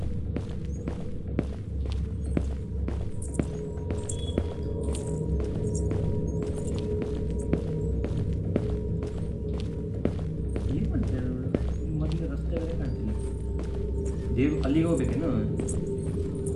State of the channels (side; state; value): both; identical; correlation 1.00